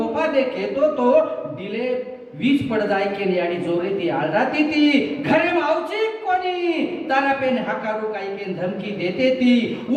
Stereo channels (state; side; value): identical; both; correlation 1.00